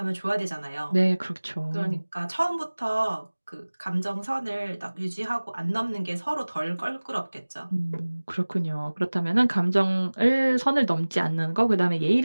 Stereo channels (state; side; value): inverted; both; correlation -1.00